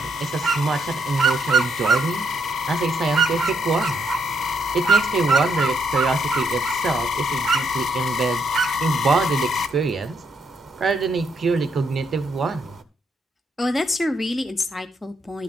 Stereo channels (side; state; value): both; normal; correlation 0.75